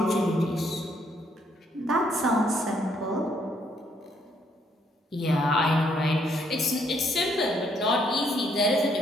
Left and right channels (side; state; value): both; normal; correlation 0.70